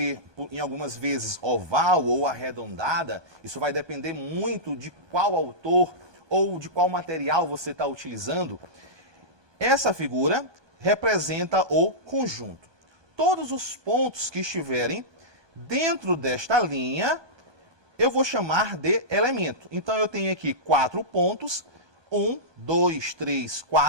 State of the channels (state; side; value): late; left; 1.2 ms